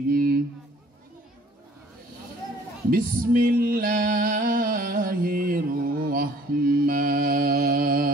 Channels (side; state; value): both; normal; correlation 0.55